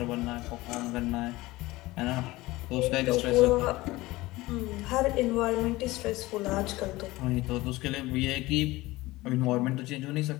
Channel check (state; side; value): quieter; right; 19.6 dB